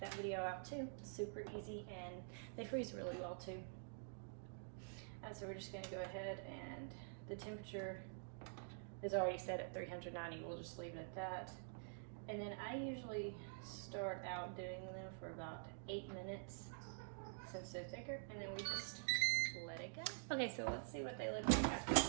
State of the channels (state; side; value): silent; left; digital silence